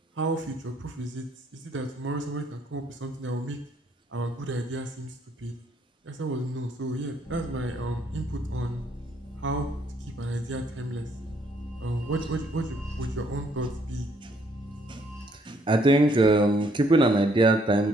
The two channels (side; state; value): both; normal; correlation 0.67